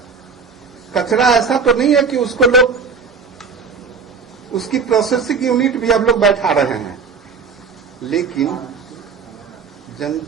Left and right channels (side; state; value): left; quieter; 5.4 dB